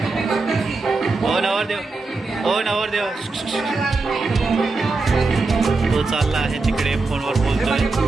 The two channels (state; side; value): quieter; left; 3.7 dB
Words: हो नवरदेव, हो नवरदेव, तो चालला आहे तिकडे फोनवर बोलतोय।